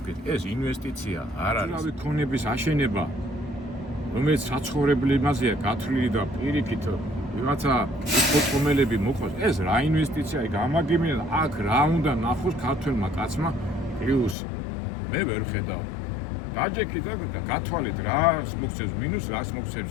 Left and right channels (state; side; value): drops out; right; at 14.4 s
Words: თქვით ეს ინვესტიცია არ არის რავი ქონების აშენება რომელიც საცხოვრებელი იმაზეა გათვლილი და პირიქით ვიღაცა პორტფოლიოები მოყავს, ეს რა ინვესტიციაა, გამაგებინა აქ რა უნდა ნახოს ქართველმა კაცმა პლუსი. მე ვერ ხედავ. დაჯექი და გათვალეთ რა მოგცემს მინუს, რას